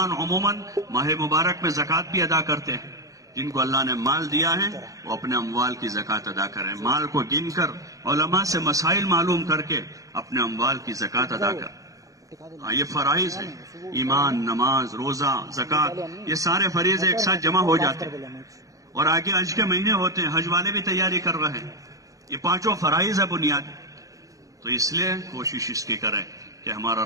عموماً ماہ مبارک میں زکوٰۃ بھی ادا کرتے ہیں۔ جن کو اللہ نے مال دیا ہے وہ اپنے اموال کی زکوٰۃ ادا کریں، مال کو گن کر علماء سے مسائل معلوم کر کے اپنے اموال کی زکوٰۃ ادا کریں۔ ہاں، یہ فرائض ہیں، ایمان، نماز، روزہ، زکوٰۃ، یہ سارے فریضے ایک ساتھ جمع ہو جاتے ہیں، اور آگے حج کے مہینے ہوتے ہیں، حج والے بھی تیاری کر رہے ہیں۔ یہ پانچوں فرائض ہے بنیاد، تو اس لیے کوشش اس کی کریں کہ ہمارا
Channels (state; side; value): late; left; 0.16 ms